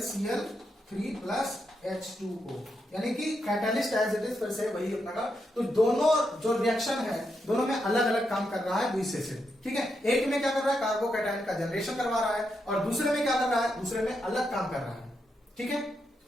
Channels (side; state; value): both; normal; correlation 0.83